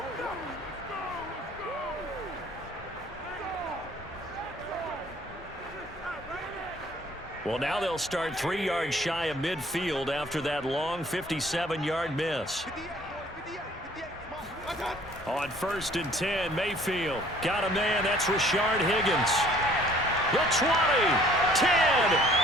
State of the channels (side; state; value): both; normal; correlation 0.56